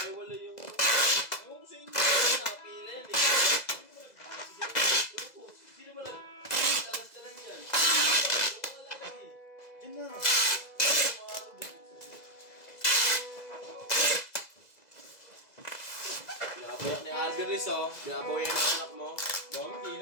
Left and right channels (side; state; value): right; late; 2.0 ms